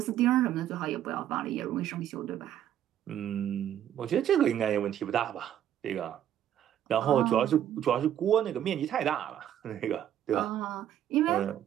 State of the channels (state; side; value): quieter; left; 10.8 dB